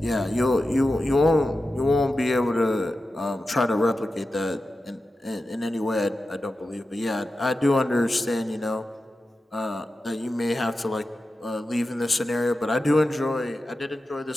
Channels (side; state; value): both; normal; correlation 0.92